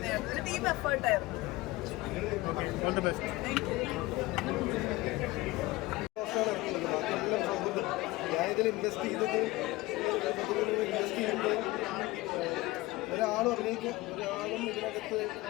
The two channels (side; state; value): right; quieter; 19.9 dB